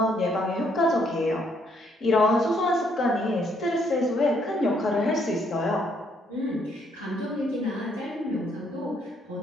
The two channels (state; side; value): normal; both; correlation 0.70